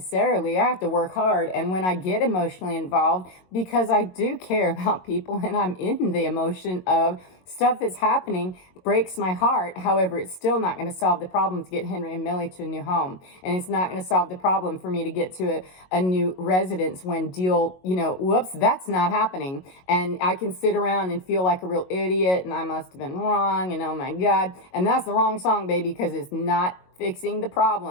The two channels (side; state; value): right; late; 22 ms